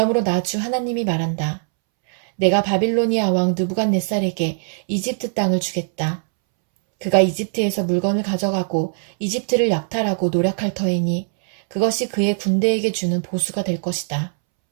나 주 하나님이 말한다. 내가 바빌로니아 왕 느부갓네살에게 이집트 땅을 주겠다. 그가 이집트에서 물건을 가져가고 이집트를 약탈하고 노력할 터이니 그것이 그의 군대에게 주는 보수가 될 것이다.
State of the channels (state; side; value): silent; left; 65 dB below the other